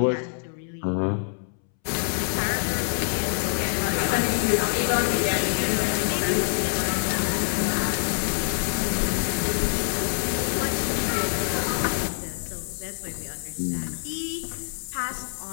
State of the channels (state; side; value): silent; right; 61 dB below the other